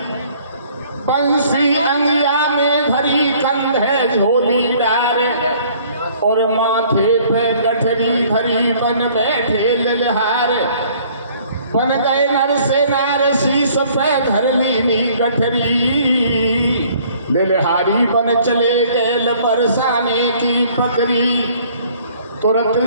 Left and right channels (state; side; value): inverted; both; correlation -0.57